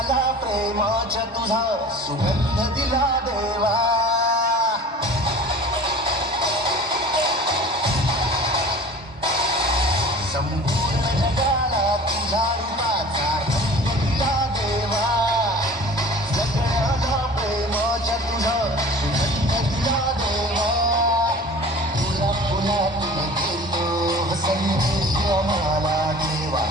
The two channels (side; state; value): both; normal; correlation 0.42